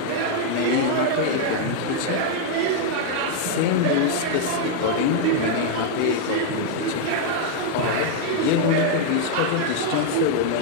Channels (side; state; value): both; different; correlation 0.00